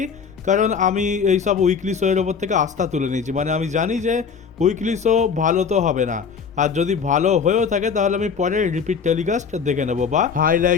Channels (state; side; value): quieter; right; 6.1 dB